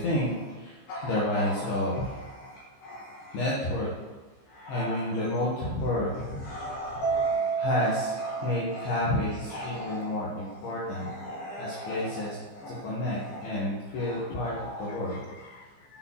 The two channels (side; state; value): right; late; 15 ms